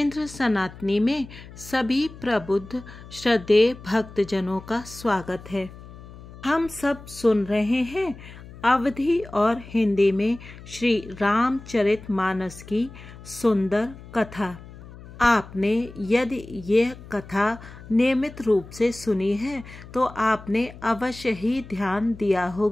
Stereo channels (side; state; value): left; noise; hum, 17 dB below the sound